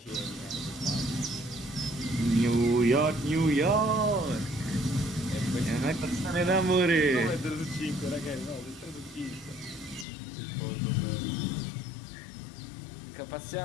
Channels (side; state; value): right; drops out; at 10.1 s